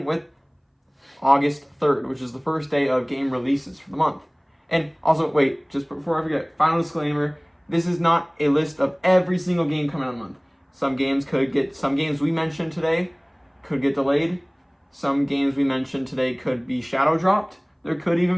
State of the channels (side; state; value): both; identical; correlation 1.00